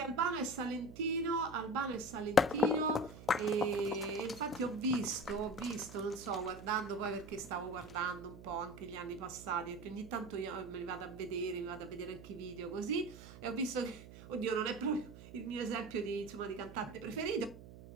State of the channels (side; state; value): right; noise; hum, 16 dB below the sound